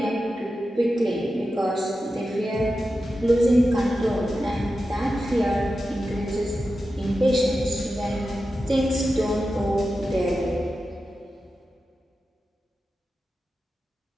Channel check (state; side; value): normal; both; correlation 0.91